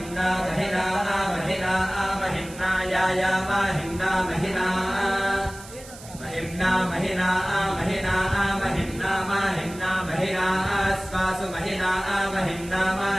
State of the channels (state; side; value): noise; right; hiss, 17 dB below the sound